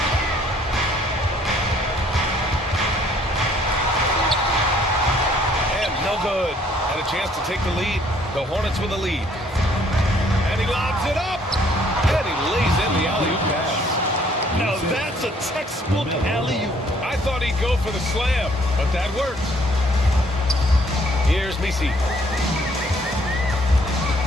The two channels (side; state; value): both; normal; correlation 0.63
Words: And no good. And a chance to take the lead. The Hornets with the lead. And he lobs it up. And he lays in the alley-oop pass. Now that's a textbook alley-oop. I thought he'd go for the slam, but that worked. Here's Messi.